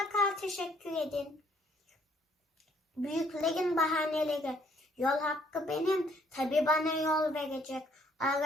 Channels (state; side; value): normal; both; correlation 0.65